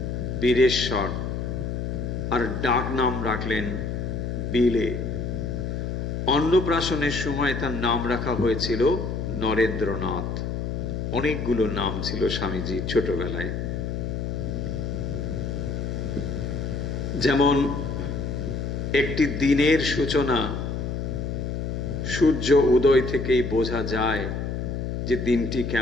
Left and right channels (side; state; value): left; noise; hum, 3 dB below the sound